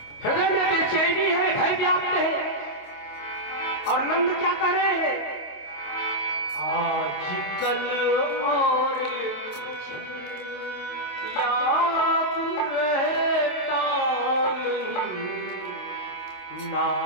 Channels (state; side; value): late; right; 27 ms